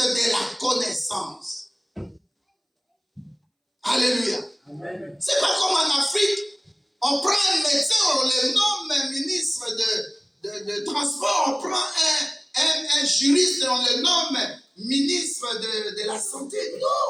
la connaissance. Alléluia. Amen. C'est pas comme en Afrique, on prend un médecin, on le nomme ministre de transport, on prend un juriste, on le nomme ministre de la santé.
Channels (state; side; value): identical; both; correlation 1.00